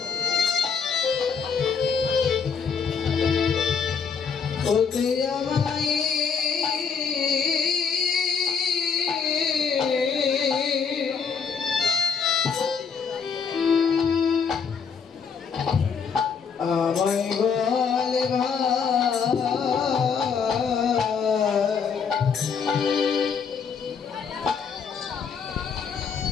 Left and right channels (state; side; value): quieter; right; 6.1 dB